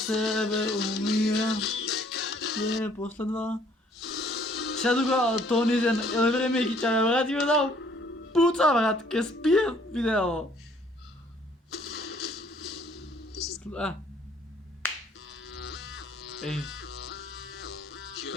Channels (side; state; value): both; normal; correlation 0.61